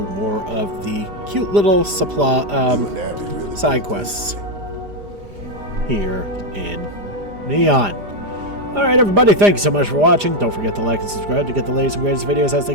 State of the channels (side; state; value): left; late; 4.9 ms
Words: more of the cute little supply side quests here in Neon. Alright everybody, thank you so much for watching. Don't forget to like and subscribe to get the latest and greatest videos as they